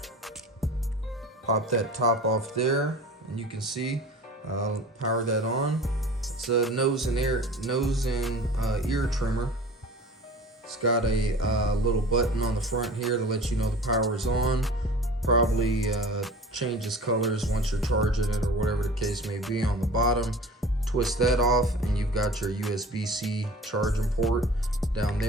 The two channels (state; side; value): normal; both; correlation 0.40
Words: Pop that top off there, and you can see, power that on. It's a nose and ear trimmer. It's got a little button on the front here to let you know the power is on. Probably changes colors once you're charging it or whatever the case may be on the bottom. Twist that off, and you've got your USB-C charging port down